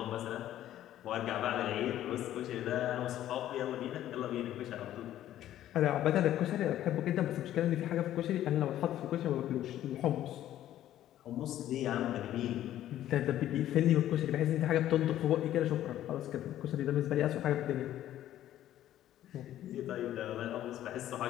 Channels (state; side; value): quieter; right; 12.6 dB